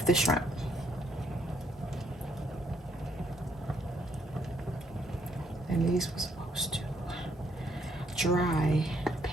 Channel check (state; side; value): normal; both; correlation 0.70